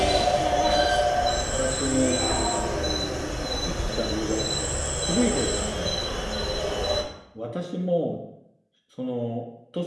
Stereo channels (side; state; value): both; identical; correlation 1.00